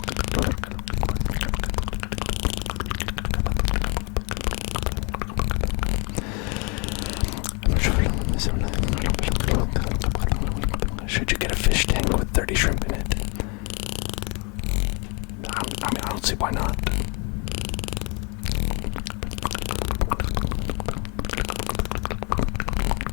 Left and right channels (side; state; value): right; quieter; 32.0 dB